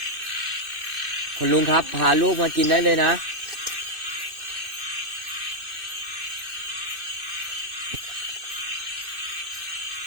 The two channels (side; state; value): left; late; 2.6 ms